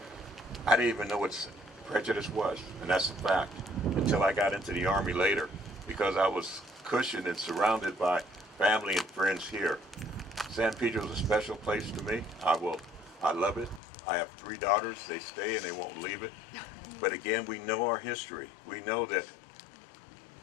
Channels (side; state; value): right; drops out; at 13.8 s